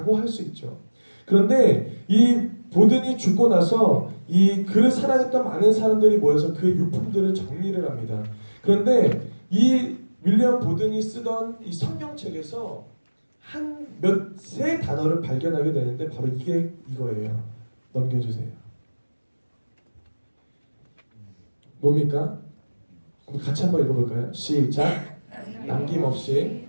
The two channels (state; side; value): inverted; both; correlation -1.00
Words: 할 수 있죠. 그런데 이 보든이 죽고 나서 이 그를 사랑했던 많은 사람들이 모여서 그 유품들을 정리를 합니다. 그런데 이 윌리엄 보든이 쓰던 이 성경책에서 세 단어를 발견하게 되는데 바로 이게 이거예요. 넘겨주세요. 뭡니까? 우리 같이 한번 읽어볼까요? 시작. 남김없이,